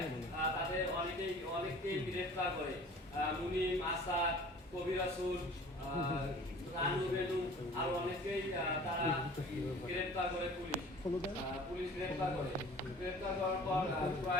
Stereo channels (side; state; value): both; normal; correlation 0.46